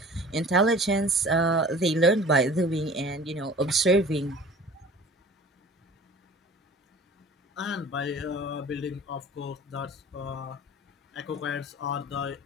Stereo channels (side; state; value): both; normal; correlation 0.43